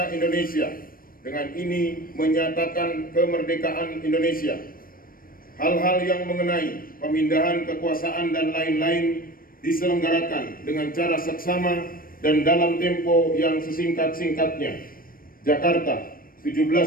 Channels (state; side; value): late; right; 0.41 ms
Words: Indonesia, dengan ini menyatakan kemerdekaan Indonesia. Hal-hal yang mengenai pemindahan kekuasaan dan lain-lain diselenggarakan dengan cara seksama dan dalam tempo yang sesingkat-singkatnya. Jakarta,